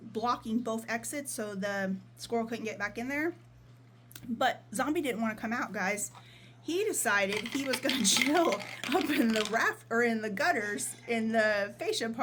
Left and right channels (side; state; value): both; identical; correlation 1.00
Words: both exits so the squirrel couldn't get back in there. But Zombie didn't want to come out, guys. He decided he was going to chill up in the gutters in the fascia